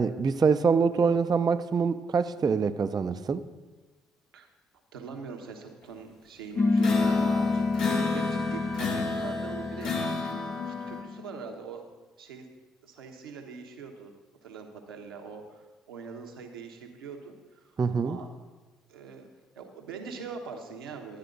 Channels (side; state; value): both; normal; correlation 0.79